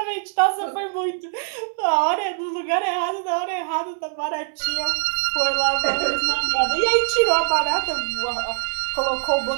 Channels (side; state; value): left; silent; 61 dB below the other